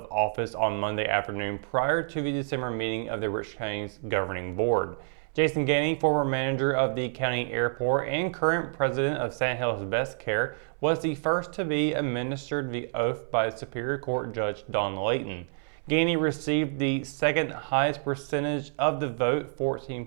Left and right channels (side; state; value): left; silent; 59 dB below the other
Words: office on Monday afternoon prior to the December meeting of the Richmond County's governing board. Jason Gainey, former manager of the county airport and current president of Sand Hills Best Care, was the first to be administered the oath by Superior Court Judge Don Layton. Gainey received the second highest percentage of the vote,